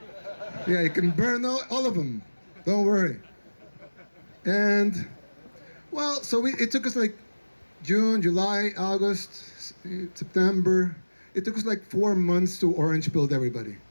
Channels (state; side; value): inverted; both; correlation -1.00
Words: Yeah, you can burn all of them. Don't worry. And, well, so it took us like June, July, August, September. It took us like 4 months to orange build everybody.